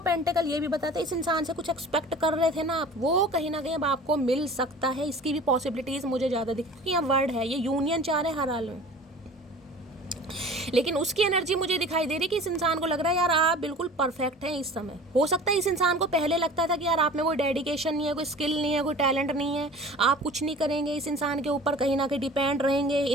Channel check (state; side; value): normal; both; correlation 0.42